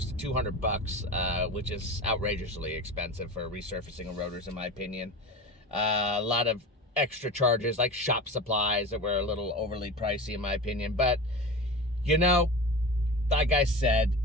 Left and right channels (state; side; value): normal; both; correlation 0.31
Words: to $200, which is outrageously expensive for resurfacing of rotors, in my opinion. A lot of extra charges, like shop supplies, that were a little overly pricey, in my opinion. But, like I said,